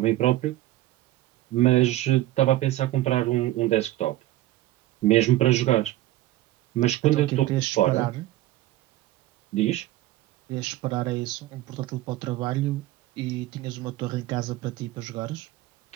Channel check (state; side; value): quieter; left; 15.6 dB